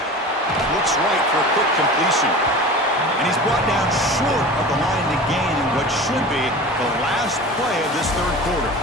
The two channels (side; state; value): both; normal; correlation 0.35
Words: Looks right for a quick completion. And he's brought down short of the line to gain in what should be the last play of this third quarter.